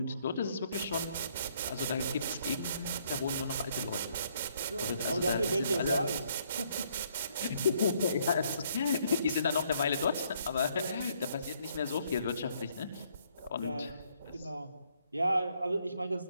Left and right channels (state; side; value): inverted; both; correlation -0.68